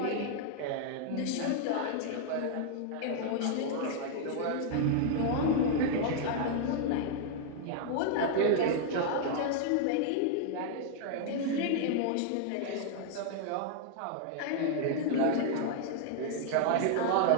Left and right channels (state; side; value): different; both; correlation 0.00